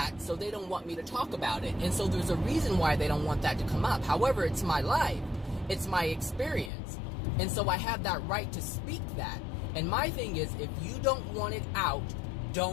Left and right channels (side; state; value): right; drops out; at 6.7 s